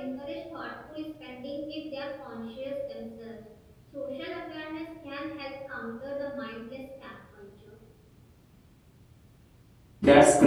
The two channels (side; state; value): both; identical; correlation 1.00